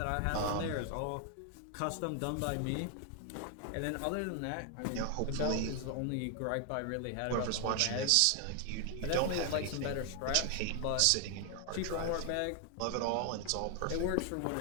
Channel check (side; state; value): both; different; correlation 0.00